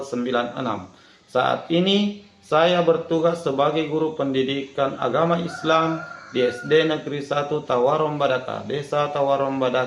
Saat ini saya bertugas sebagai guru pendidikan agama Islam di SD Negeri 1 Tawarombadaka, Desa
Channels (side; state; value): both; identical; correlation 1.00